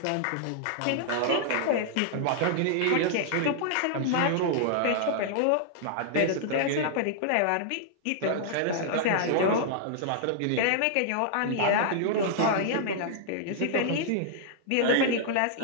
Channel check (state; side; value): different; both; correlation -0.01